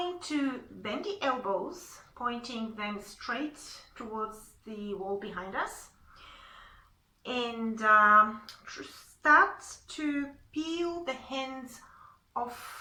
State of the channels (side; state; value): both; identical; correlation 1.00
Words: to bend the elbows, pointing them straight towards the wall behind us, and start to peel the hands off